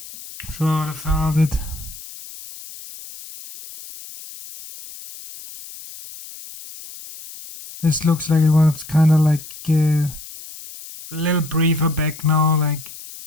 Should have held it. This looks like it was kind of like a little briefer back now. Like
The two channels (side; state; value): left; noise; hiss, 15 dB below the sound